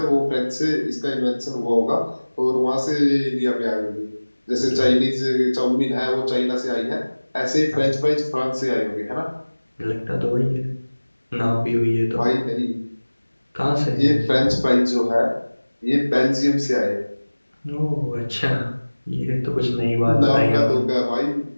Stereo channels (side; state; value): both; inverted; correlation -1.00